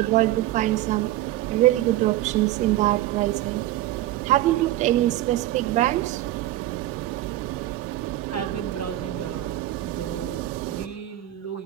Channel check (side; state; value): left; quieter; 14.9 dB